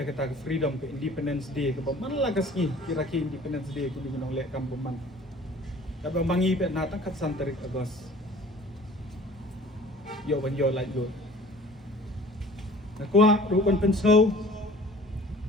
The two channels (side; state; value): both; normal; correlation 0.48